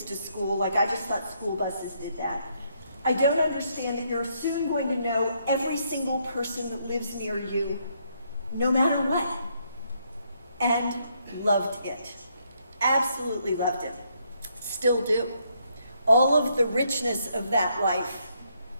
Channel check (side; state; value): both; inverted; correlation -0.73